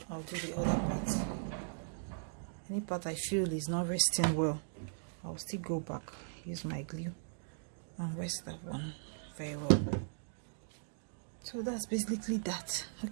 I'll do the other part. Any part I feel is not resting well, I'll still go back, use my glue and rest that one very well. So that's basically that.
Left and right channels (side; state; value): left; silent; digital silence